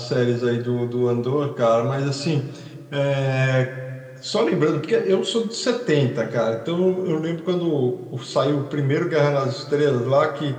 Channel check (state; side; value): identical; both; correlation 1.00